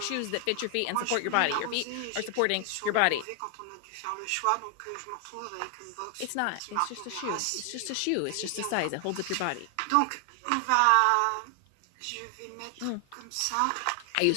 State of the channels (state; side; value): different; both; correlation 0.00